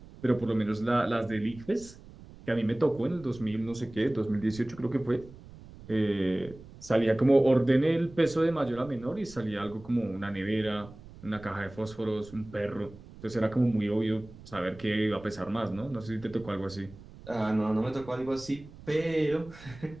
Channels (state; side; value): noise; right; rumble, 18 dB below the sound